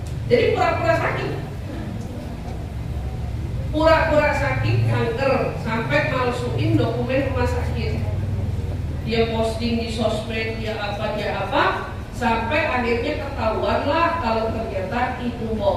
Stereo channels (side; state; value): both; identical; correlation 1.00